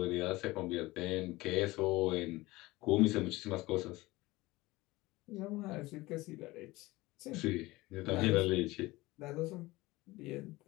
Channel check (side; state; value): right; quieter; 20.1 dB